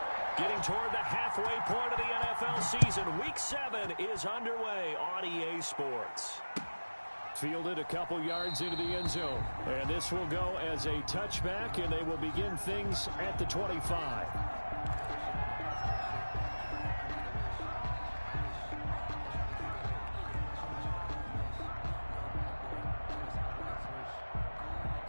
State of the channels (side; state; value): both; inverted; correlation -1.00